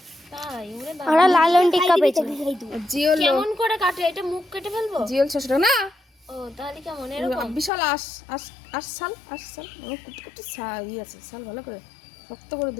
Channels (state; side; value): drops out; right; at 7.7 s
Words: তাই ওরে বাবা ওরা লালন টিক্কা পেয়েছে আর জিওল কেমন করে কাটে এটা মুখ কেটে ফেলবো জিওল 600 টাকা না ও তাহলে কেমন এরকম বিশাল আশ সাল আমার কুটি ই আছে সাল ভালো করে শক্ত করে